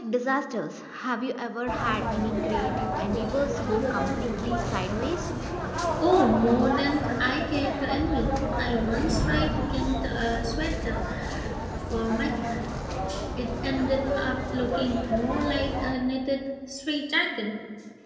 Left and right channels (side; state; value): both; identical; correlation 1.00